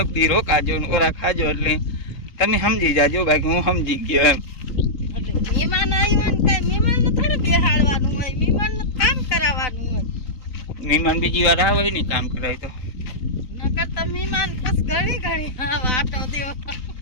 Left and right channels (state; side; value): late; right; 4.0 ms